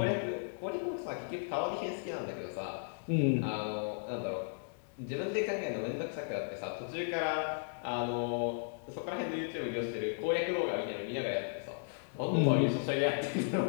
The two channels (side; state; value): right; silent; digital silence